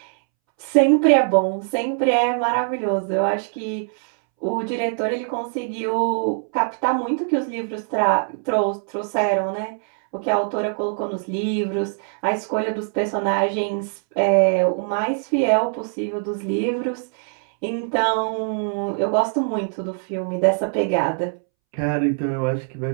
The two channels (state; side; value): silent; left; 64 dB below the other